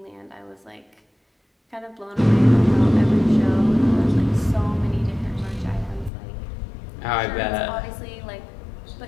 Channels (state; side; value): drops out; right; at 6.1 s